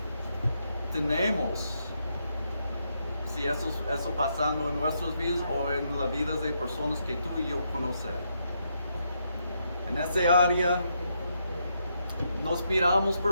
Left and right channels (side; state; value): both; inverted; correlation -0.79